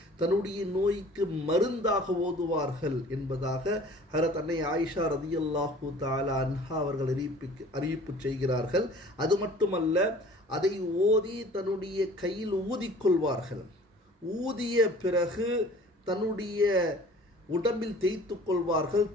தன்னுடைய நோய்க்கு மருந்தாக ஓதுவார்கள் என்பதாக ஹஜ்ரத் அன்னை ஆயிஷா ரதியல்லாஹு தஆலா அன்ஹா அவர்கள் அறிவிப்பு செய்கிறார்கள். அது மட்டுமல்ல, அதை ஓதி தன்னுடைய கையில் ஊதிக்கொள்வார்கள். ஊதிய பிறகு தன்னுடைய உடம்பில் தேய்த்து கொள்வார்கள்,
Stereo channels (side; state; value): both; normal; correlation 0.48